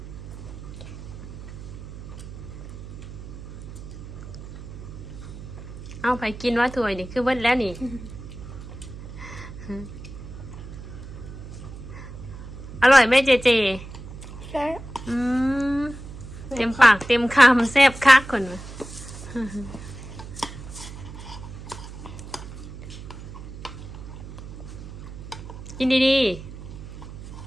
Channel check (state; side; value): noise; right; hum, 12 dB below the sound